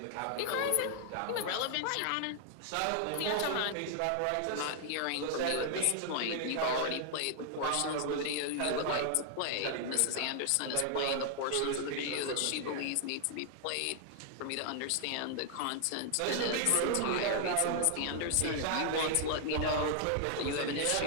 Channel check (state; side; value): different; both; correlation 0.00